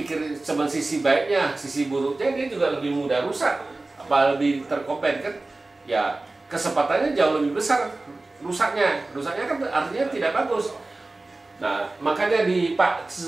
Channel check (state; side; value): quieter; left; 3.1 dB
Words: cuma sisi baiknya, sisi buruknya dia juga lebih mudah rusak, apa lebih terkopen kan? Ya kesempatannya jauh lebih besar rusaknya kan artinya tidak bagus. Nah makanya di Pak